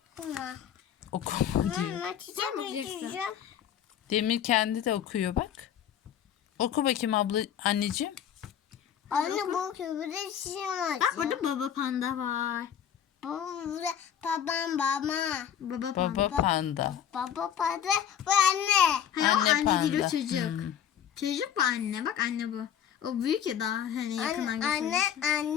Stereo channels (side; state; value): right; quieter; 9.4 dB